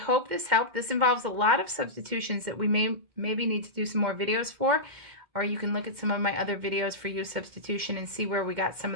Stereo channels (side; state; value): left; late; 2.1 ms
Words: this helped. This involves a lot of substitutions that we maybe need to do some more videos for, or you can look at some of my other videos for u-substitution and see where we got some